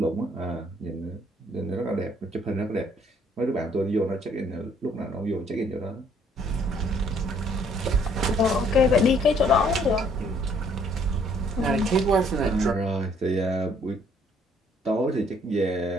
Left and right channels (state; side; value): normal; both; correlation 0.63